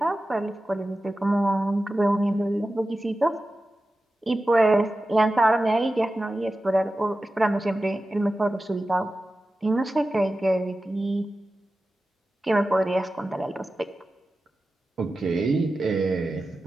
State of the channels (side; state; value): both; normal; correlation 0.94